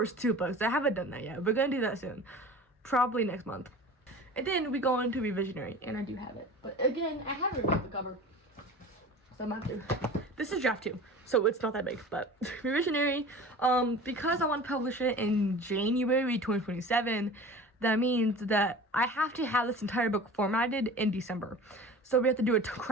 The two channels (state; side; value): normal; both; correlation 0.38